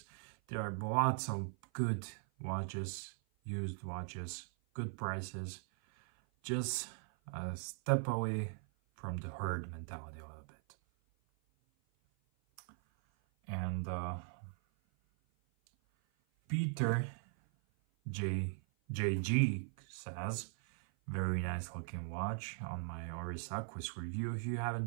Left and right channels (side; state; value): left; silent; 51 dB below the other